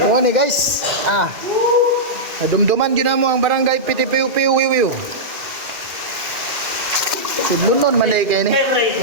Mone guys. Dumduman gyud mo ang barangay Pitipiu-Piu Wiwiw. Sudlunon man day kay ni.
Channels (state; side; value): late; left; 2.2 ms